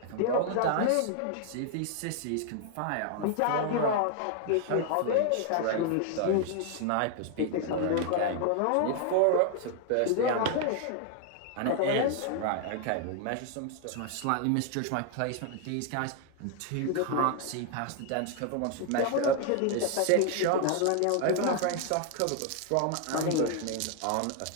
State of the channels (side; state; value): both; different; correlation 0.00